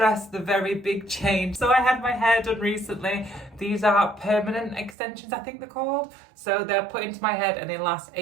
the very big change. So I had my hair done recently. These are permanent extensions, I think they're called. So they're put into my head and they last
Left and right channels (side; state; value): left; drops out; at 5.0 s